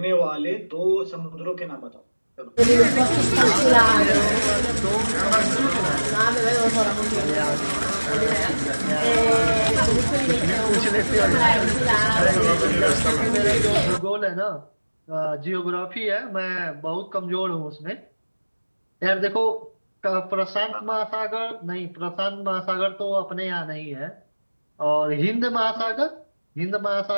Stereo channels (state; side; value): inverted; both; correlation -1.00